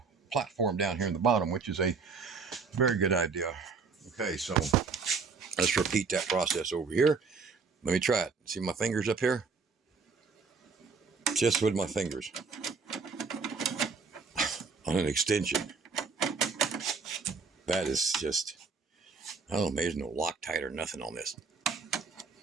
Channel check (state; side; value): quieter; left; 4.9 dB